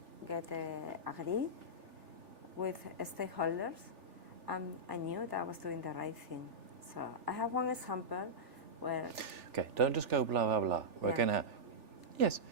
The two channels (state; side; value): late; left; 3.4 ms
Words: get agree with stakeholders, and I knew that I was doing the right thing. So I have one example where... Okay, don't just go blah, blah, blah. We're going to... Yes,